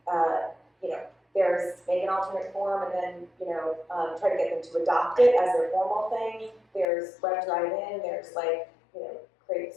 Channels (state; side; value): drops out; right; at 6.9 s